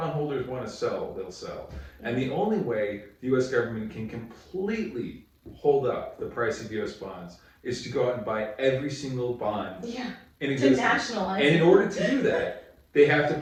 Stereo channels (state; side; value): identical; both; correlation 1.00